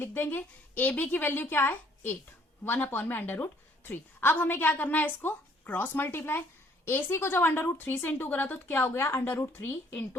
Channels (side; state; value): both; normal; correlation 0.62